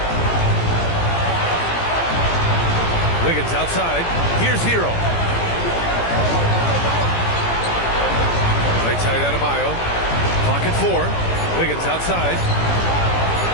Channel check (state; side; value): late; right; 17 ms